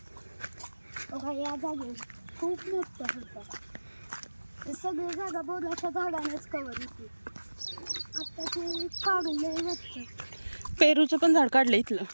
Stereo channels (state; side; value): inverted; both; correlation -1.00